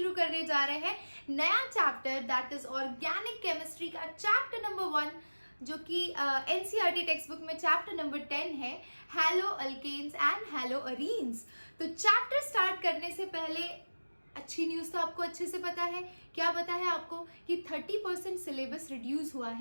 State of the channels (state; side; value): inverted; both; correlation -1.00